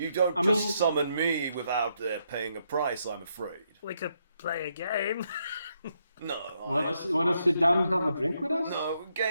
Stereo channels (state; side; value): inverted; both; correlation -0.77